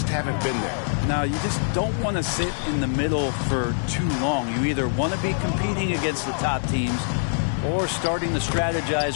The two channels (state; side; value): silent; right; digital silence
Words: haven't been there. Now, you just don't want to sit in the middle for too long. You either want to be competing against the top teams or starting to